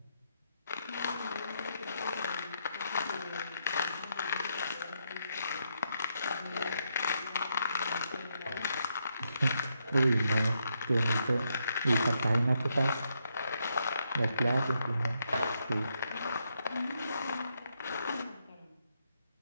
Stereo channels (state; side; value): inverted; both; correlation -0.79